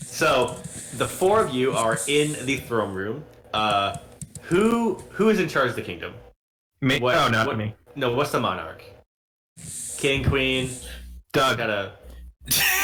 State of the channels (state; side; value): identical; both; correlation 1.00